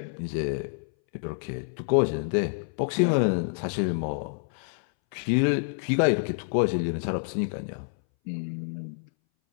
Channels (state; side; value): silent; right; 60 dB below the other